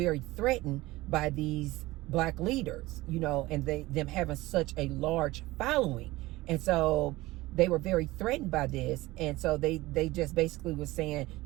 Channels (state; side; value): quieter; left; 19.2 dB